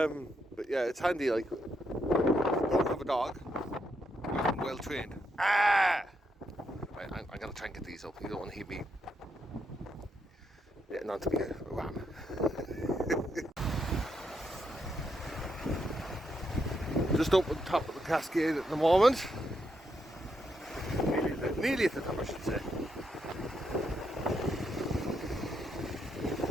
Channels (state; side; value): normal; both; correlation 0.79